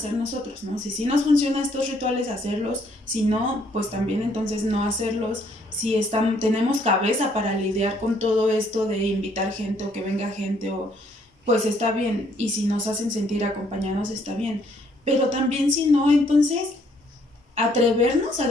nosotros, ¿no? Si nos funcionan estos rituales, hacerlos, si no, pues también entonces no hacerlos. Si tenemos cabeza para lidiar con todo esto de invitar gente o que venga gente, pues está bien, y si nos hacen sentir acompañados está bien, pero también si no, entonces atrevernos a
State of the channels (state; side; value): normal; both; correlation 0.67